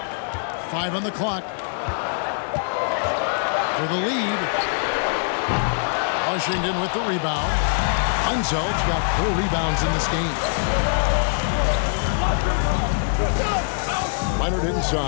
5 on the clock. For the lead. Washington with the rebound. Unzel's got 4 rebounds in this game. Leonard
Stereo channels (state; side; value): silent; right; digital silence